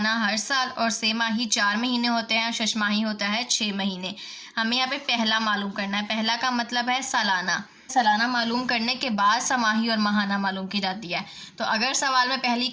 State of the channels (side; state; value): both; identical; correlation 1.00